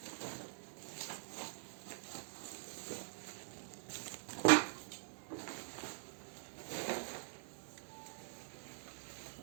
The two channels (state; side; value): silent; left; digital silence